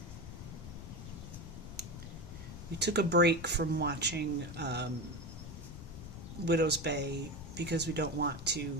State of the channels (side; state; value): left; noise; rumble, 11 dB below the sound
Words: We took a break from watching Widow's Bay because we don't want to